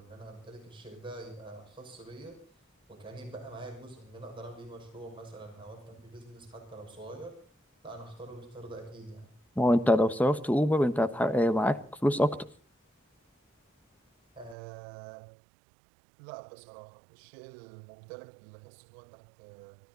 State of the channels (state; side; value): drops out; left; at 14.6 s